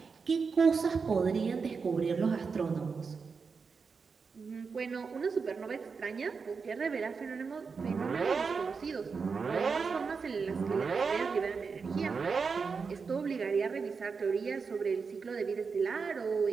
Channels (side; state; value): left; quieter; 5.2 dB